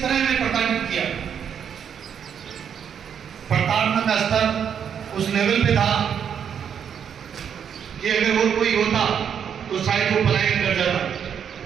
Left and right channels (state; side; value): quieter; left; 8.0 dB